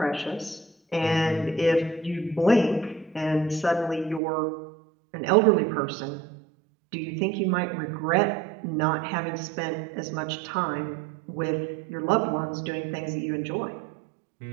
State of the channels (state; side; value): drops out; left; at 4.2 s